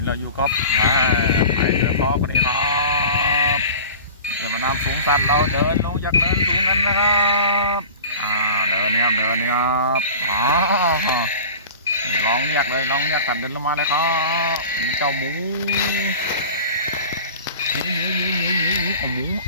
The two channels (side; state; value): both; inverted; correlation -0.37